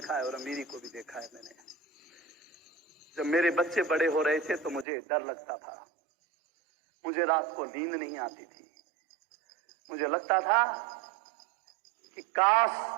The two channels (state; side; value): drops out; left; at 4.9 s